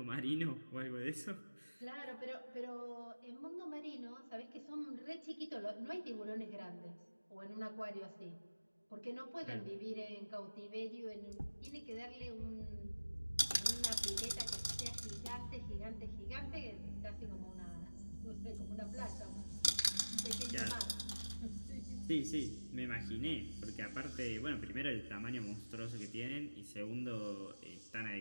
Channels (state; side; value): inverted; both; correlation -1.00